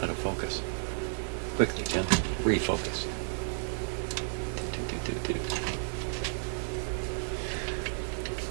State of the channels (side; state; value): left; silent; 56 dB below the other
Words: of focus. Quickly, Jim. Refocus.